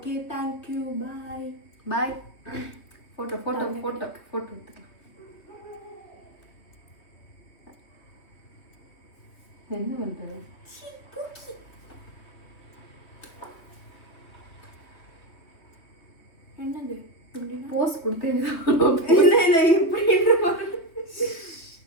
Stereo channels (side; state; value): right; late; 3.2 ms